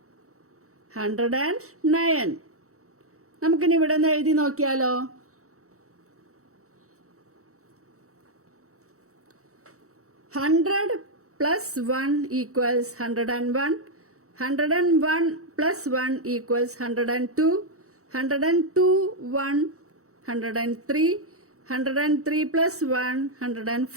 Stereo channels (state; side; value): late; left; 0.64 ms